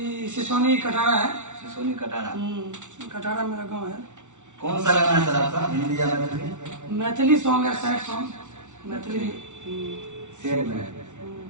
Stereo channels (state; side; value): late; left; 0.85 ms